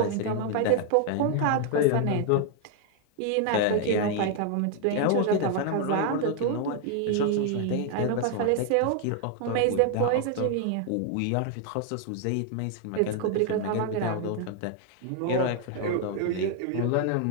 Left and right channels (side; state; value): both; different; correlation 0.00